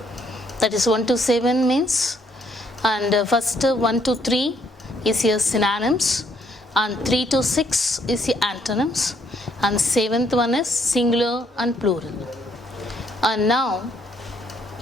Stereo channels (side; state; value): both; normal; correlation 0.69